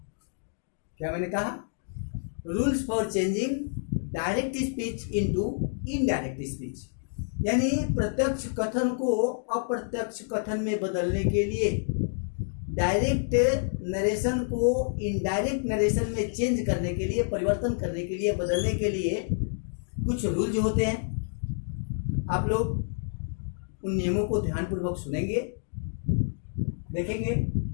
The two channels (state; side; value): silent; right; digital silence